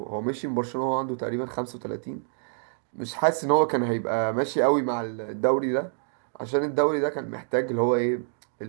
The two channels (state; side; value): silent; left; digital silence